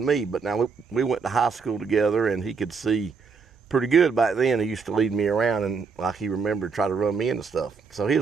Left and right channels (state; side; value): quieter; left; 5.2 dB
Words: me, but now we went to high school together, and he could see pretty good back then. He used to lead me around, and like he remembered, try to run me into stuff. So he